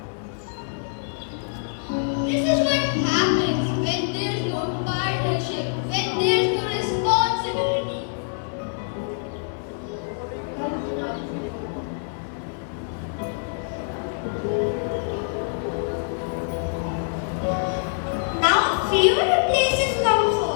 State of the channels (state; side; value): silent; right; 62 dB below the other